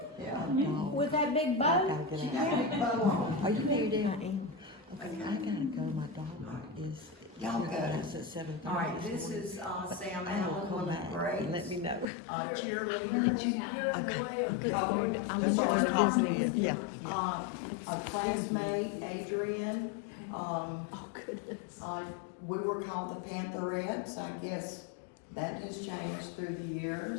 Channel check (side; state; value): right; drops out; at 12.1 s